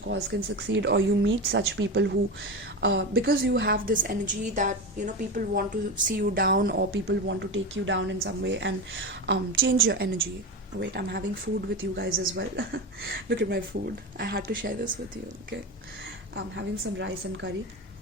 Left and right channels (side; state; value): both; normal; correlation 0.21